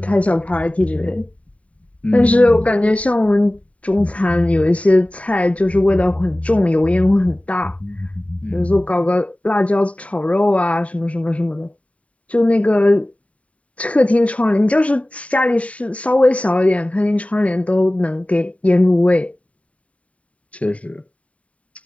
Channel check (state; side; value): late; right; 0.066 ms